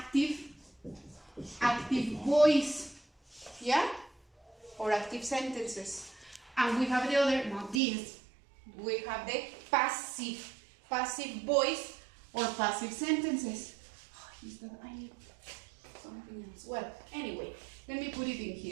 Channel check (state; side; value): drops out; left; at 7.8 s